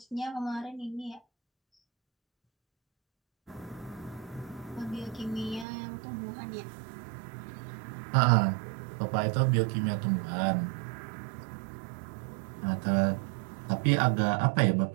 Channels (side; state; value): left; drops out; at 5.7 s